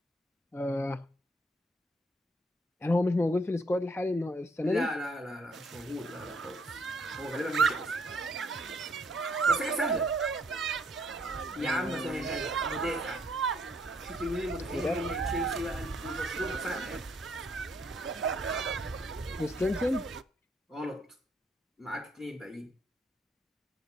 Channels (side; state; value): both; normal; correlation 0.68